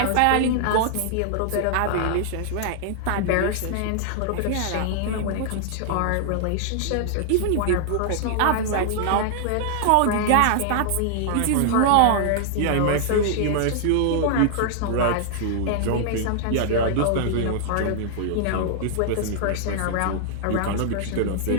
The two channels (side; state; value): both; different; correlation -0.01